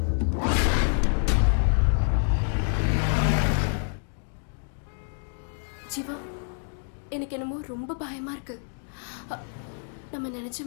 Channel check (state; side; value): silent; right; 60 dB below the other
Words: ஜீவா, எனக்கு என்னமோ ரொம்ப பயமா இருக்கு. நம்ம நினைச்ச